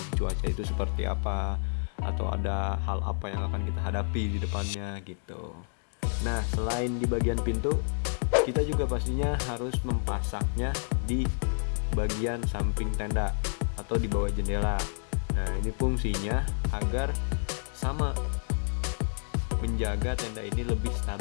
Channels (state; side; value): silent; right; 58 dB below the other